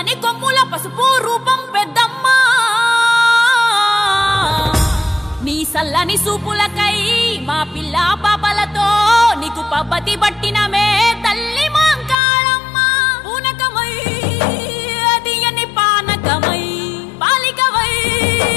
కొమ్ముల పసుపు రూపం పెద్దమ్మ నీ సల్లని సూపులకై మా పిల్ల పాపలతో నీకు పబ్బతి పట్టినమే తల్లి మాంకాళమ్మ పూనకమై తీయని పానకమై పాలికవై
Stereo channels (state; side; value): drops out; right; at 12.2 s